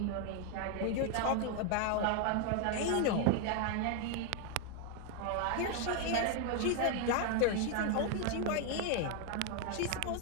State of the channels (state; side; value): different; both; correlation 0.01